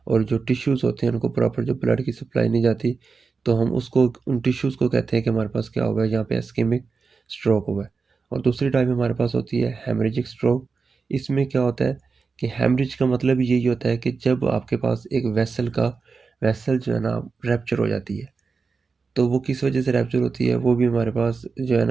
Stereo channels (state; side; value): quieter; left; 4.7 dB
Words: और जो टिश्यूज़ होते हैं उनको प्रॉपर जो ब्लड की सप्लाई नहीं जाती, तो हम उसको उन टिश्यूज़ को कहते हैं कि हमारे पास क्या हुआ है, यहाँ पे इस्केमिक स्ट्रोक हुआ है। और दूसरी टाइप हमारे पास होती है हेमरेजिक स्ट्रोक। इसमें क्या होता है कि हेमरेज का मतलब यही होता है कि जब आपके पास एक वेसल जो है ना रैप्चर हो जाती है। तो वो किस वजह से रैप्चर होती है, वो भी हमारे पास जो है